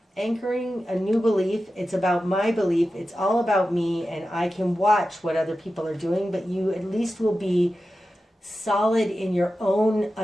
Anchoring a new belief. It's about my belief. It's all about me, and I can watch what other people are doing, but you at least will be solid in your own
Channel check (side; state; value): both; normal; correlation 0.92